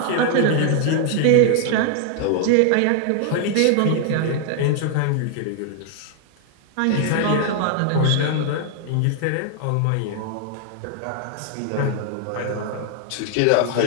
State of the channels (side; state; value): both; different; correlation 0.00